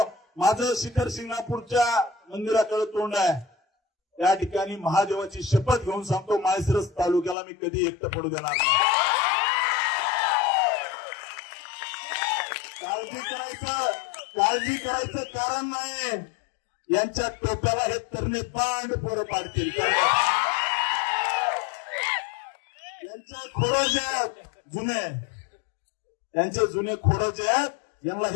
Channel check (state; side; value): drops out; right; at 7.4 s